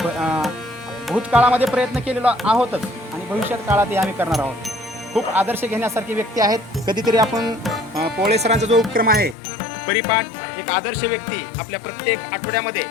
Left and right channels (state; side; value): drops out; right; at 9.3 s